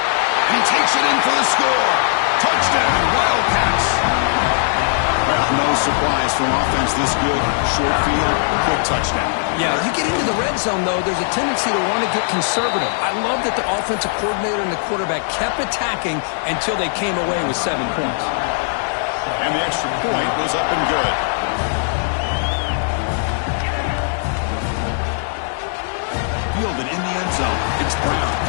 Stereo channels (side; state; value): right; silent; digital silence